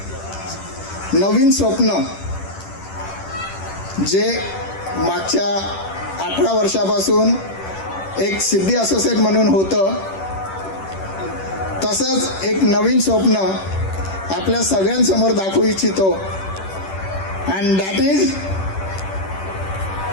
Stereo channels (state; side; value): late; right; 10 ms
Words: नवीन स्वप्न जे मागच्या 18 वर्षापासून एक सिद्धी असोसिएट म्हणून होतं, तसंच एक नवीन स्वप्न आपल्या सगळ्यांसमोर दाखवू इच्छितो। And that is